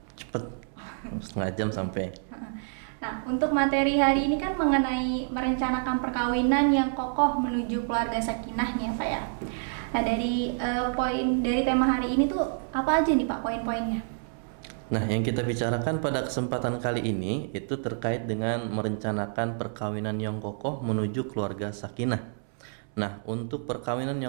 cepet, setengah jam sampai. Nah, untuk materi hari ini kan mengenai merencanakan perkawinan yang kokoh menuju keluarga sakinah nih ya, Pak ya. Nah, dari tema hari ini tuh apa aja nih, Pak, poin-poinnya? Nah, yang kita bicarakan pada kesempatan kali ini itu terkait dengan merencanakan perkawinan yang kokoh menuju keluarga sakinah. Nah, untuk perkawinan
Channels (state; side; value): silent; left; 59 dB below the other